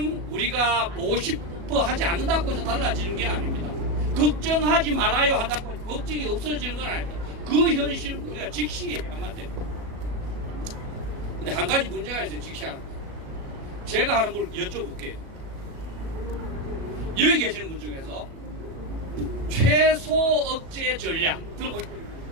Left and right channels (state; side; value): late; left; 37 ms